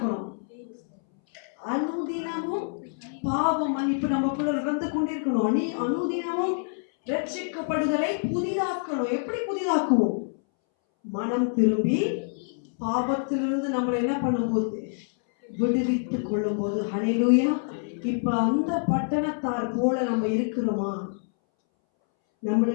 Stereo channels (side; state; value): right; silent; 61 dB below the other